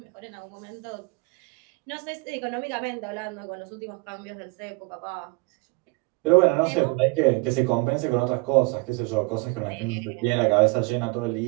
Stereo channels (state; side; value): quieter; left; 28.1 dB